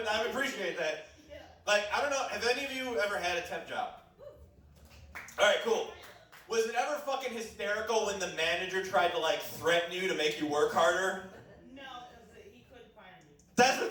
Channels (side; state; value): both; identical; correlation 1.00